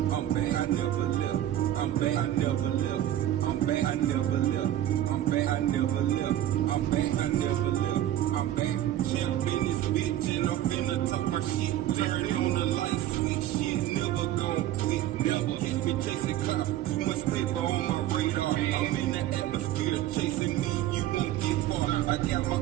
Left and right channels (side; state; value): left; quieter; 12.8 dB